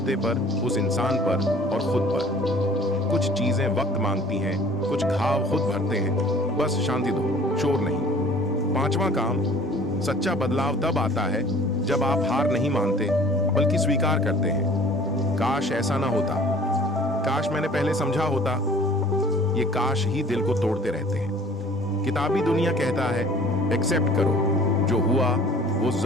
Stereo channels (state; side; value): normal; both; correlation 0.50